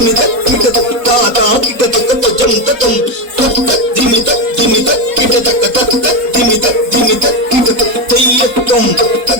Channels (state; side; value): late; left; 4.1 ms